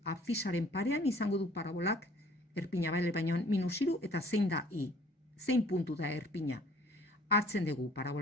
abzisaren parean izango du parabolak erpina baina minus iru eta zein da I. Zein puntu da erpina. hartzen dugu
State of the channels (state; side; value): normal; both; correlation 0.54